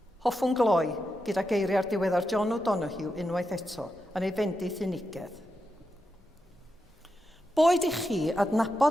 Hoffwn gloi gyda geiriau'r diweddar John O'Donoghue unwaith eto yn ei fendith unigedd. Boed i chi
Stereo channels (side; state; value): both; normal; correlation 0.87